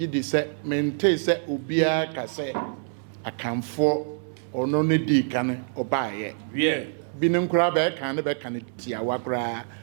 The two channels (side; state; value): left; silent; 61 dB below the other